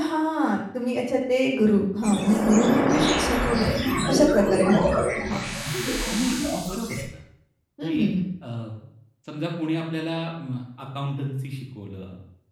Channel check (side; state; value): both; identical; correlation 1.00